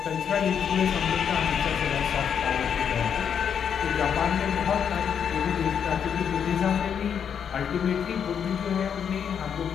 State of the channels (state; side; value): quieter; right; 7.8 dB